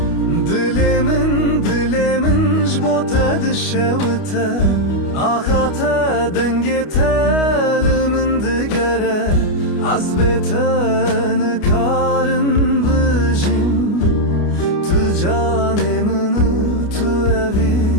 Dilê min ji bo te dişewite Axa te dengê te li min digere Ez bê te nikarim bijim Tu canê min e, tu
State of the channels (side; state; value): right; late; 29 ms